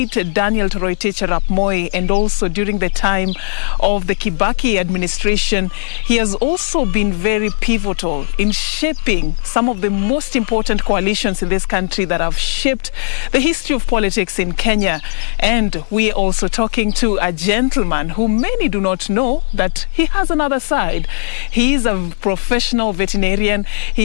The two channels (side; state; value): right; silent; 69 dB below the other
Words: Daniel Toroitich arap Moi and also during the time of the Kibaki administration. He has also been very pivotal in shaping some of the most important coalitions in this country that have shaped the history of politics in Kenya. And we are also talking to a gentleman who many do not know that he has another side. He is a professional veterinarian,